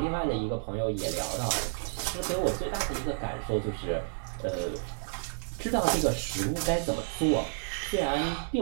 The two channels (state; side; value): silent; left; digital silence